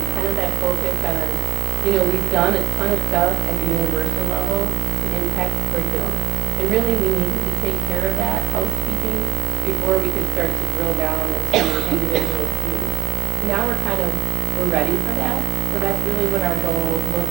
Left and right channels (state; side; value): quieter; left; 14.5 dB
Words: kind of that focus on, we've done a ton of stuff at the universal level to impact curriculum. And really we needed to take care of that housekeeping before we could start to drill down into individual students. Now we're ready for that. So that's really what our goal